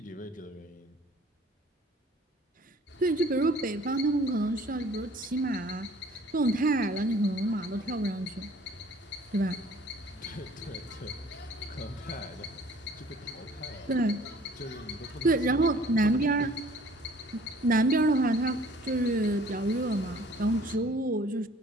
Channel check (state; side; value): normal; both; correlation 0.54